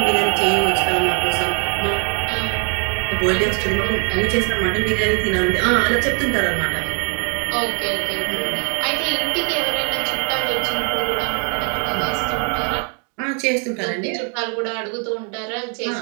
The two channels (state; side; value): quieter; left; 40.0 dB